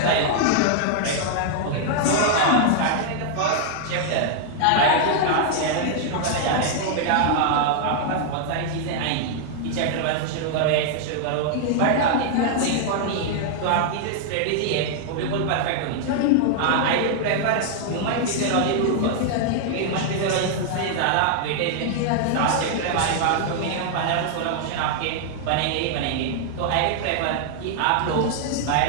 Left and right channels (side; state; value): both; different; correlation -0.01